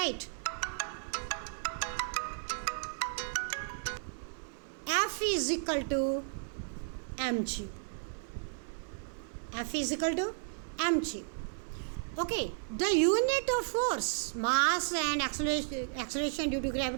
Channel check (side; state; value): left; silent; 55 dB below the other